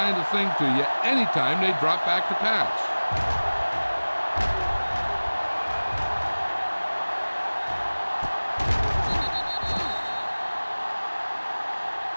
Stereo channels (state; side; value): inverted; both; correlation -1.00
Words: of thing to you anytime they drop back to pass.